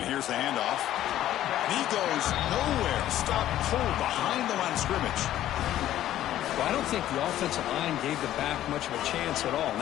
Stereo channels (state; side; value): quieter; right; 12.8 dB